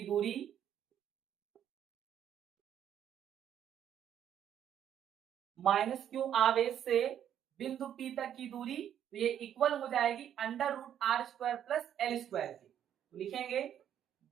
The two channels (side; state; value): left; quieter; 9.9 dB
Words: दूरी माइनस क्यू आवेश से बिंदु P तक की दूरी, तो ये इक्वल हो जाएगी under root R square plus L square की, तो लिखेंगे